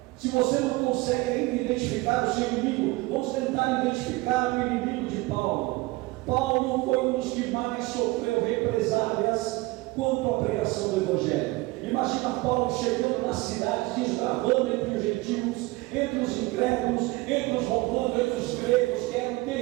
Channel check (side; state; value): left; quieter; 21.7 dB